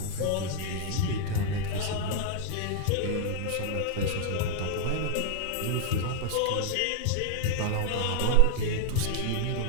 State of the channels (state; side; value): different; both; correlation 0.00